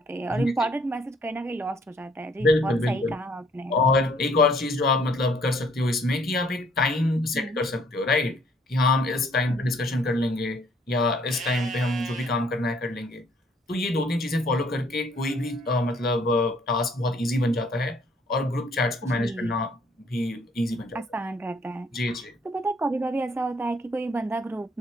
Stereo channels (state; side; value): normal; both; correlation 0.63